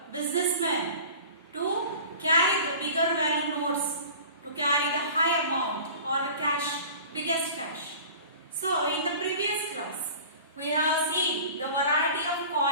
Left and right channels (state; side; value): inverted; both; correlation -0.40